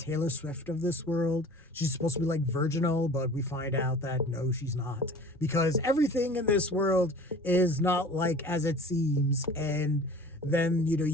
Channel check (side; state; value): both; normal; correlation 0.44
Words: Swift of this world. She's supposed to be like virginal, but we find out that no, she's not. Because everything in this world is not like as it seems. And then,